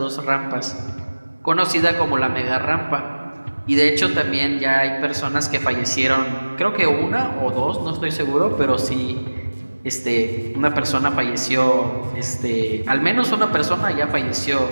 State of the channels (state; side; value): inverted; both; correlation -1.00